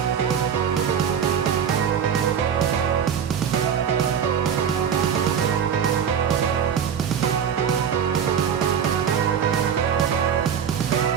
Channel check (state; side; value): quieter; left; 7.9 dB